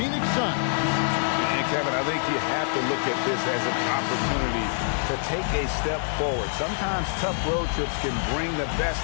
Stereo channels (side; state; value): right; silent; digital silence